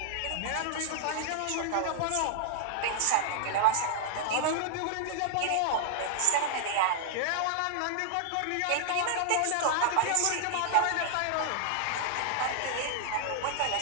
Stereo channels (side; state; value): both; different; correlation -0.01